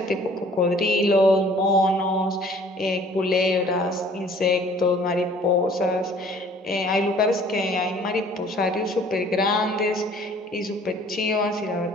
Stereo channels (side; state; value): both; normal; correlation 0.54